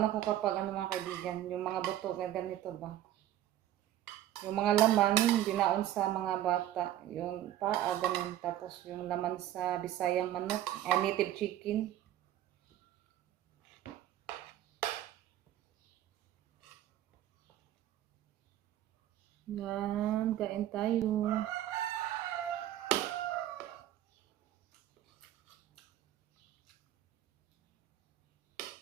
ako kapag mga kaibigan. Yung mga buto, ganito ba? Yung mga laman, binaon sa mga bata. Yung paa, ganun. Tapos yung laman sa Bisayang manok. Native chicken. Yan, kain tayo.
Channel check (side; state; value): left; quieter; 12.7 dB